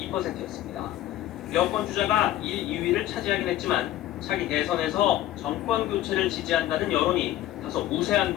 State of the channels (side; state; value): right; quieter; 13.8 dB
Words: 여권 주자가 1, 2위를 차지하긴 했지만 차기 대선에서 정권 교체를 지지한다는 여론이 다소 우세한